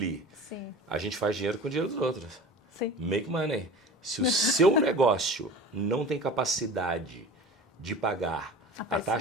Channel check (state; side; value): normal; both; correlation 0.38